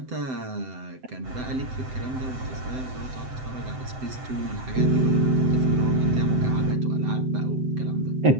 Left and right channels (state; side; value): late; left; 7.8 ms